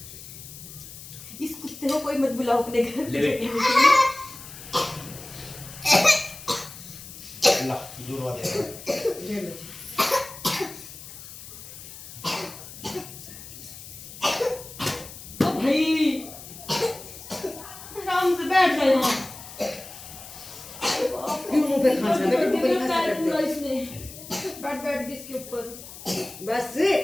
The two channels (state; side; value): noise; left; hiss, 14 dB below the sound